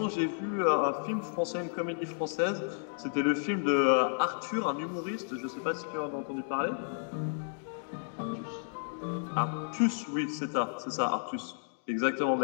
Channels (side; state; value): right; silent; digital silence